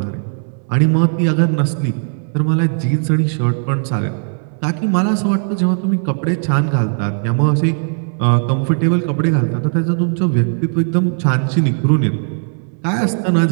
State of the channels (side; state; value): left; silent; 59 dB below the other